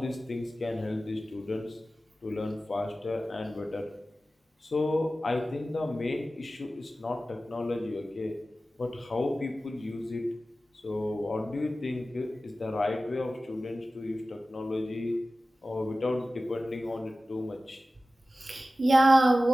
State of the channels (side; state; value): both; normal; correlation 0.95